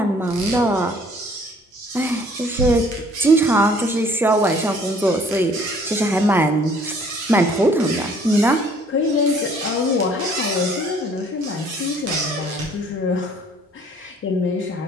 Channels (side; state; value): both; normal; correlation 0.58